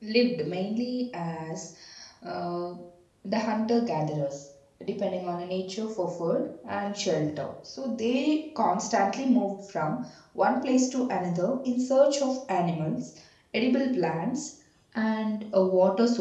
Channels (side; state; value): both; identical; correlation 1.00